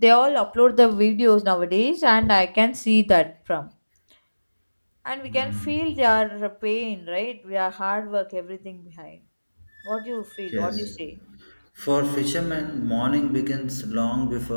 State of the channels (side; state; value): both; inverted; correlation -1.00